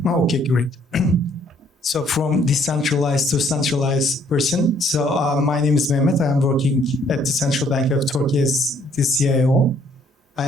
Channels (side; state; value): both; normal; correlation 0.64